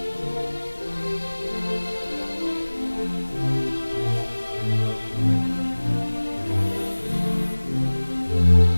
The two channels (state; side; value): inverted; both; correlation -1.00